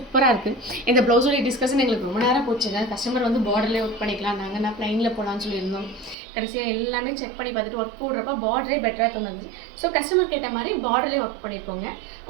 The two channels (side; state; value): left; drops out; at 6.2 s